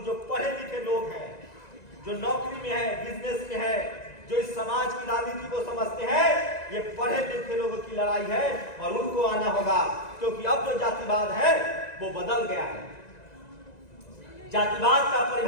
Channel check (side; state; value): right; late; 1.9 ms